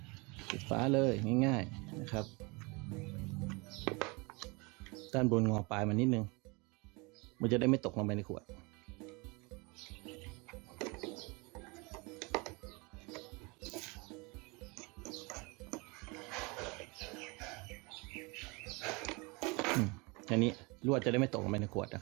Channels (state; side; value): quieter; left; 27.8 dB